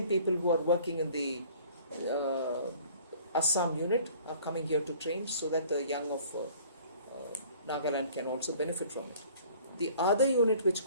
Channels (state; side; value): inverted; both; correlation -0.52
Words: people who are working in the Assam unit are coming here to train so that the young of Nagaland can also benefit from it. The other unit which